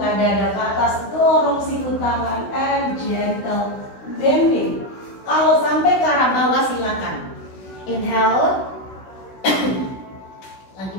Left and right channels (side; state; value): right; late; 16 ms